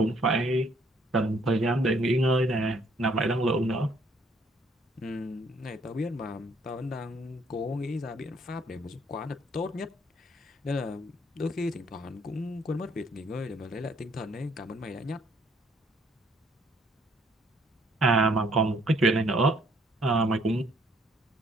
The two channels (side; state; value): both; normal; correlation 0.65